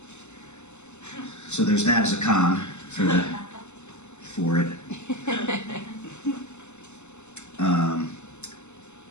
So there's that as a con for it.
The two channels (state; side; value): late; right; 0.83 ms